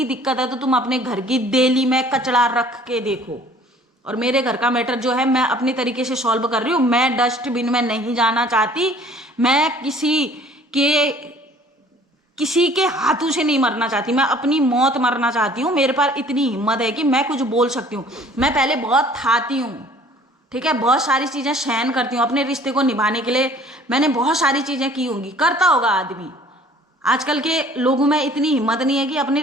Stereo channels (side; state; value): both; normal; correlation 0.53